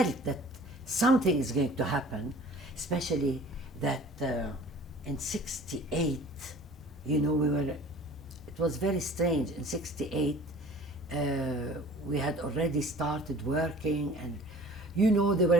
that something is going to happen, especially that in 68, you know, it was very strange. In 68, we had already started working, and, you know, there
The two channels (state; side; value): normal; both; correlation 0.47